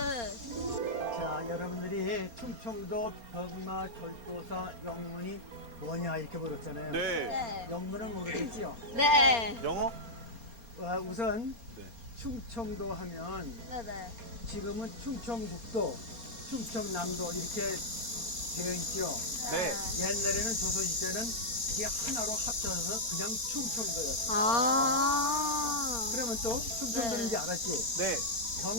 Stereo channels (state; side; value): late; left; 4.3 ms